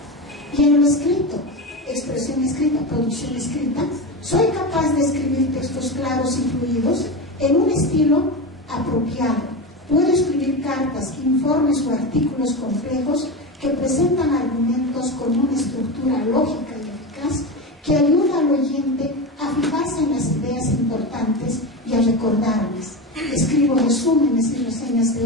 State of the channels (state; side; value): normal; both; correlation 0.20